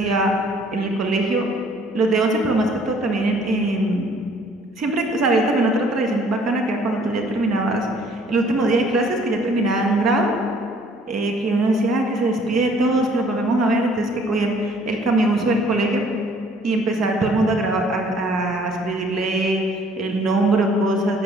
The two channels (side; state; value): both; normal; correlation 0.58